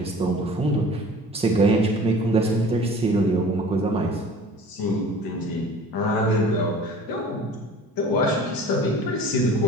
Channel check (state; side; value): normal; both; correlation 0.44